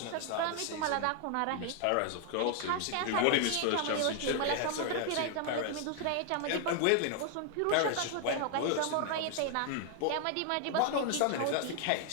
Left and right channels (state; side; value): different; both; correlation 0.00